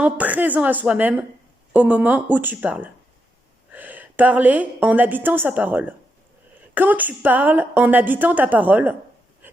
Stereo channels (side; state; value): both; normal; correlation 0.83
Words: présent à soi-même au moment où tu parles. Parler en habitant sa parole. Quand tu parles en habitant ta parole